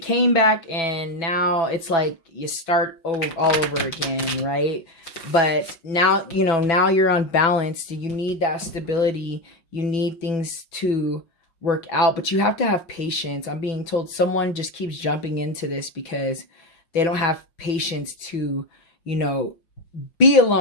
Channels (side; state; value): right; late; 6.0 ms